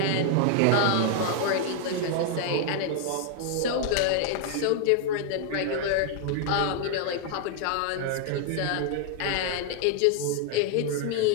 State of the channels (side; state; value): both; different; correlation 0.00